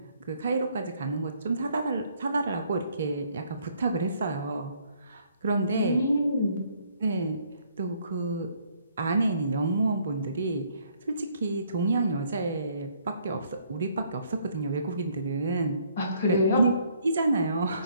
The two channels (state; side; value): inverted; both; correlation -0.65